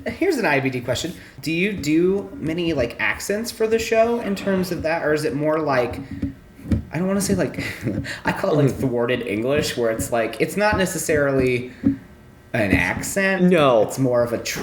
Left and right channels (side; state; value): both; identical; correlation 1.00